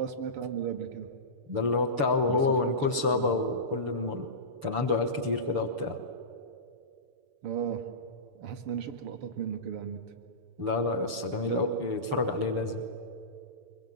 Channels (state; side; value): late; left; 6.9 ms